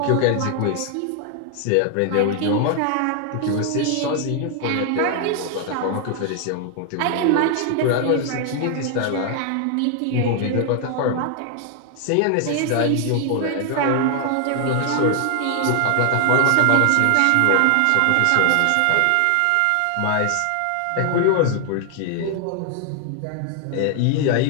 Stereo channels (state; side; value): different; both; correlation 0.00